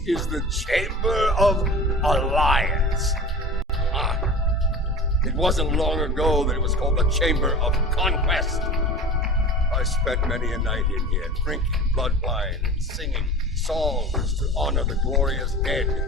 is the Chamber of Alliance. Ah, it wasn't long ago that it was called the Chamber of Conquest. I spent many a night in here, drinking blood wine and singing songs to honor the glorious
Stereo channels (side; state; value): both; normal; correlation 0.37